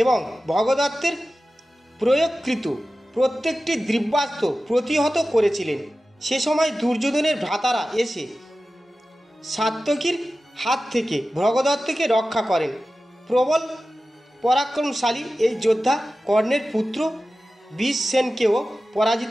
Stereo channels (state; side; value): normal; both; correlation 0.95